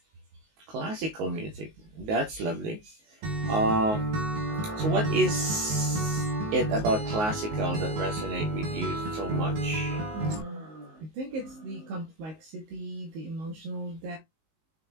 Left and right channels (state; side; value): late; left; 19 ms